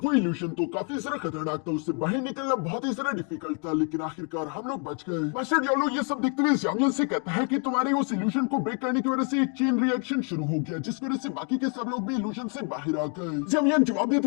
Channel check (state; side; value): quieter; right; 39.7 dB